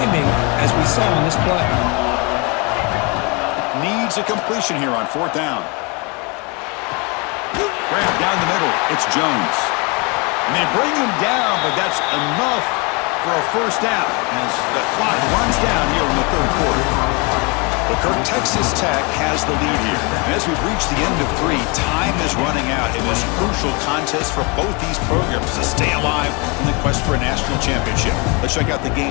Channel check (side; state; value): right; quieter; 30.2 dB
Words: as we saw on this play. Needs a completion here on fourth down. Grab down the middle. It's Jones. And they bring him down, but that's enough for a first down as the clock runs down here in the third quarter. But Kirk, Texas Tech has the lead here. And as we've reached the end of three, time is running out in this crucial contest for both these programs to stay alive in the quest for a national championship. Let's check out the